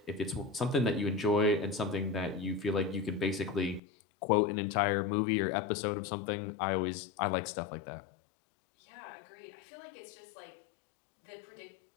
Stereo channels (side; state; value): right; drops out; at 3.8 s